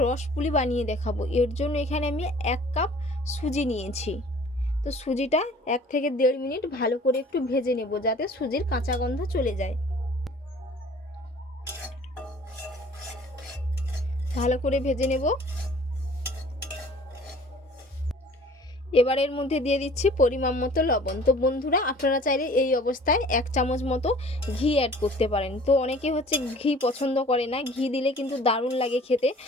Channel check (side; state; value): both; normal; correlation 0.50